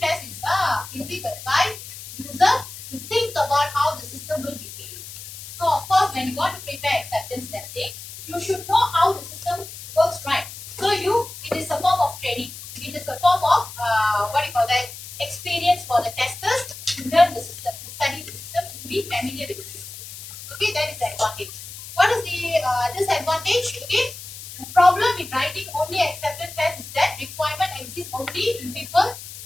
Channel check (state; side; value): noise; left; hiss, 13 dB below the sound